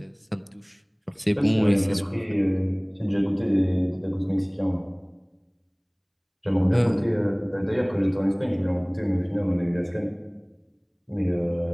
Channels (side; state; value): both; identical; correlation 1.00